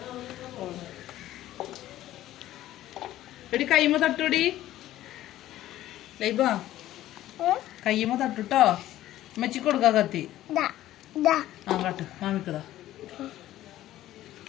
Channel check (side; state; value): right; quieter; 14.1 dB